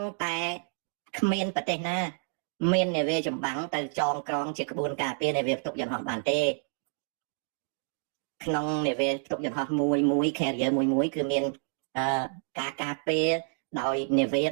តែគ្មានប្រទេសណាមាននាវាចម្បាំងទៅចងក្រងជាក្បួនការពារនាវាផ្ទុកយន្តហោះបានទេក្នុងនាវាផ្ទុកយន្តហោះមួយ carrier មួយគឺមានការការពារដោយនាវាដ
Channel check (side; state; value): left; silent; 59 dB below the other